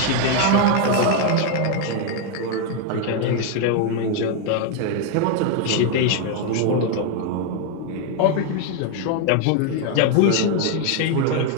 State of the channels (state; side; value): different; both; correlation 0.01